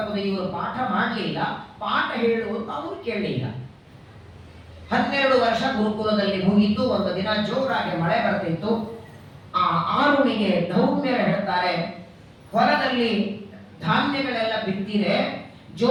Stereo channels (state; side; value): identical; both; correlation 1.00